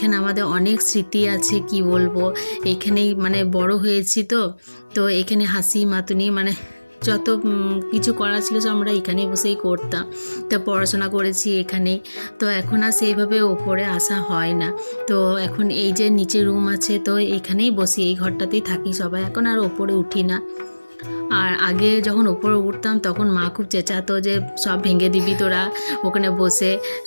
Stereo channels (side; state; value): both; inverted; correlation -1.00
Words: আমাদের অনেক স্মৃতি আছে, কি বলবো। এইখানেই মানে বড় হয়েছি। তো এখানে হাসি মাতুনি মানে যত কিছু করা ছিল সব আমরা এখানেই বসেই করতাম। তো পড়াশোনা করেছি এখানেই। তো এখন আর সেইভাবে ওপরে আসা হয় না। তো এখন এই যে নিচে রুম আছে, তো এখানেই বসি, এই ঘরটাতেই থাকি সবাই, এখন আর ওপরে উঠি না। আর আগে যখন ওপরে উঠতাম তখন মা খুব চেঁচাতো যে সব ভেঙে দিবি তোরা, ওখানে বসে